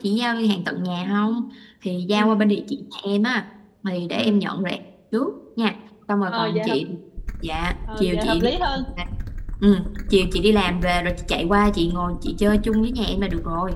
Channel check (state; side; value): identical; both; correlation 1.00